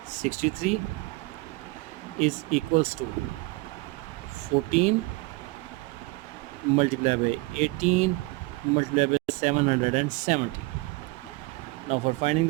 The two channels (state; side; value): quieter; left; 23.1 dB